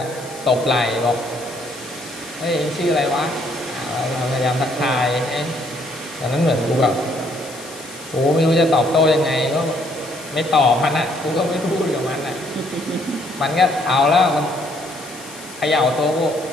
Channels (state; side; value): noise; left; hiss, 17 dB below the sound